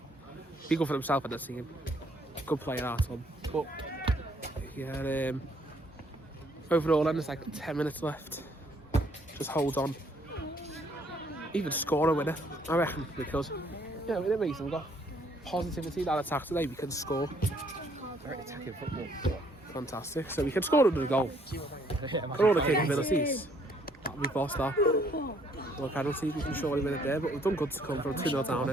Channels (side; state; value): both; normal; correlation 0.65